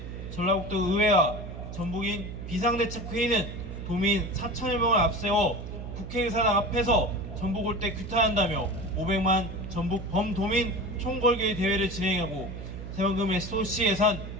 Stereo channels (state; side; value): noise; right; hum, 9 dB below the sound